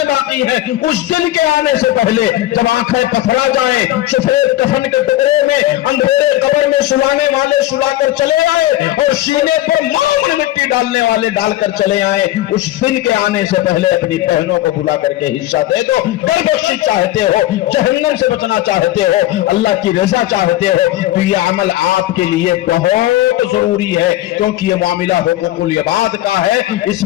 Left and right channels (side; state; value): right; quieter; 15.1 dB